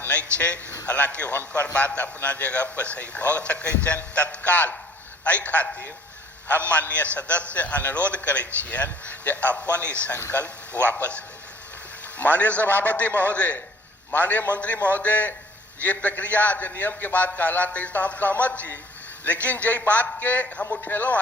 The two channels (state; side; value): normal; both; correlation 0.56